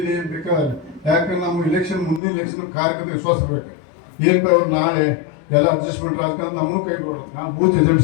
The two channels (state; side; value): drops out; right; at 2.2 s